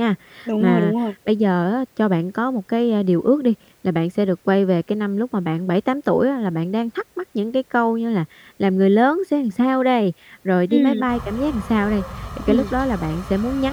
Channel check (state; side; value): identical; both; correlation 1.00